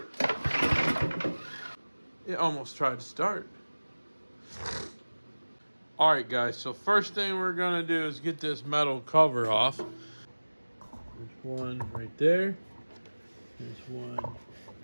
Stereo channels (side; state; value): both; inverted; correlation -1.00